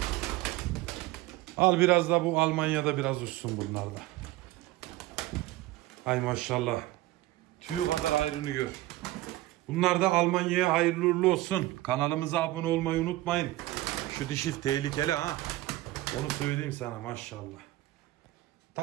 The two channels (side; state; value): left; quieter; 17.3 dB